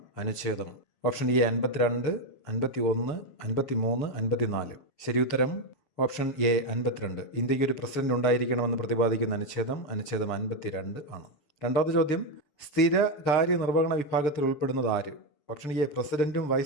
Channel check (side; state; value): right; late; 7.0 ms